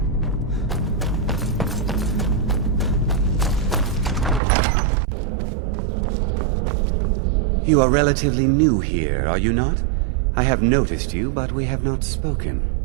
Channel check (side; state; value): left; drops out; at 4.4 s